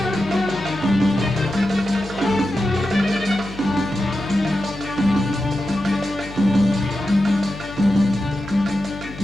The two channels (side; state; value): left; noise; hum, 14 dB below the sound